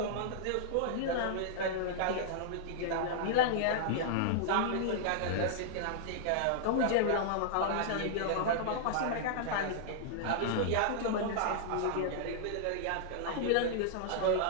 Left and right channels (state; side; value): different; both; correlation -0.01